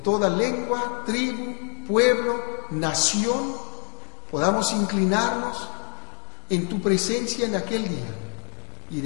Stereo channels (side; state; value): right; quieter; 38.0 dB